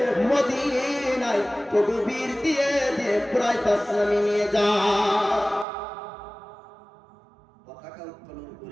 মদিনায় তাকবীর দিয়ে দিয়ে বুরাইদা আসলামী নিয়ে যায়। পতাকা উত্তোলন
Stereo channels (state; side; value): drops out; left; at 5.7 s